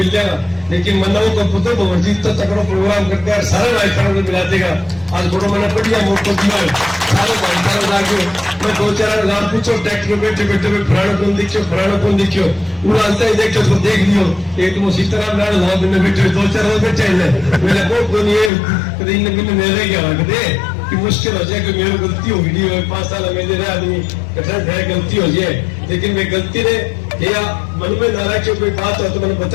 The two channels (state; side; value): drops out; right; at 18.5 s